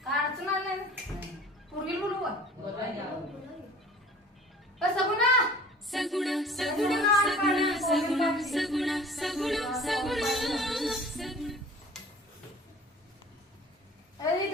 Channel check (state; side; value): normal; both; correlation 0.46